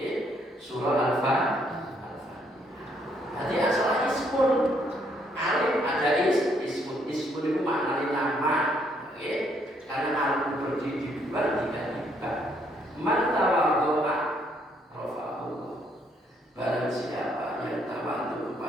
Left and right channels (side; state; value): both; normal; correlation 0.70